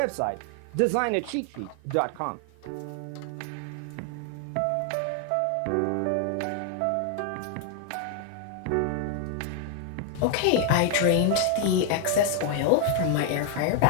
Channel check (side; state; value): both; different; correlation 0.00